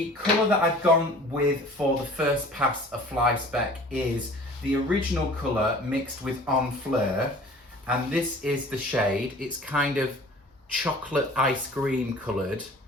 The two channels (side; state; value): both; normal; correlation 0.47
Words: colour that I've gone with for the first pass of fly speck is the original colour mixed with En Fleur, and this is the shade. It's kind of chocolate ice cream coloured,